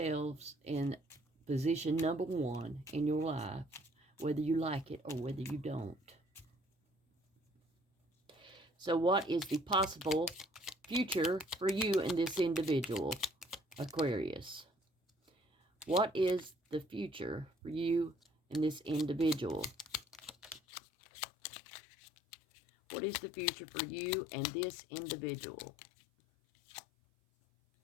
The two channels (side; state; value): right; drops out; at 20.6 s